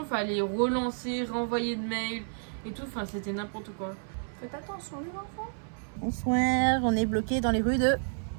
il fallait relancer, renvoyer de mails et tout. Enfin, c'était n'importe quoi. Faites attention, les enfants. Bonsoir, on est bloqué dans les rues de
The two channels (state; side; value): silent; left; 58 dB below the other